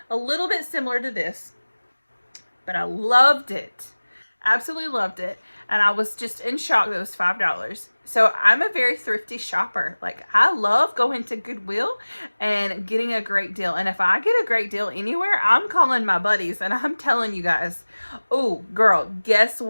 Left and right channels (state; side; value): inverted; both; correlation -1.00